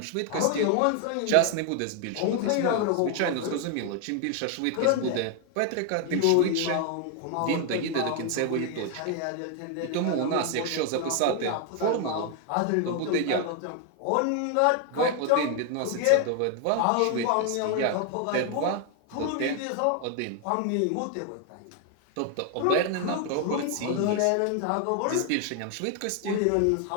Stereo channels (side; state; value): both; different; correlation 0.00